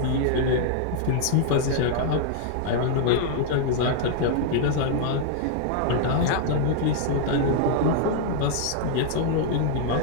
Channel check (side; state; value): both; different; correlation -0.01